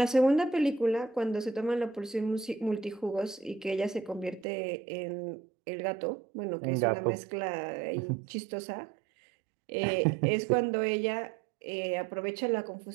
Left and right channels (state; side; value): drops out; left; at 4.5 s